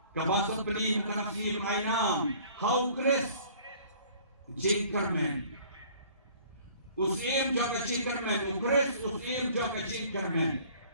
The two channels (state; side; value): inverted; both; correlation -0.52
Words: Kabasal beli mengenai mainam, how Chris Jinkerman, usim jaga Jinkerman, Chris usim jaga Jinkerman.